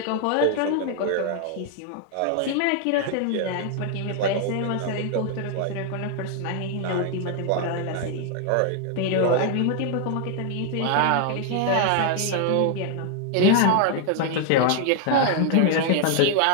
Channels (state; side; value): different; both; correlation 0.00